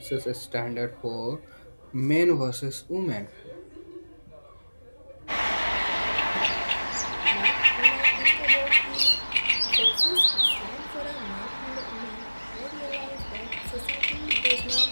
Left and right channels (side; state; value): both; inverted; correlation -1.00